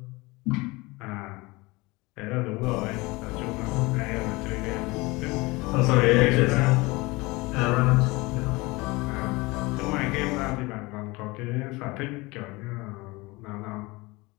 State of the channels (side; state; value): right; quieter; 23.4 dB